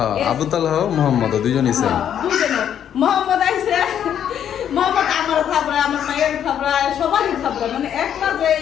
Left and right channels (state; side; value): quieter; right; 9.5 dB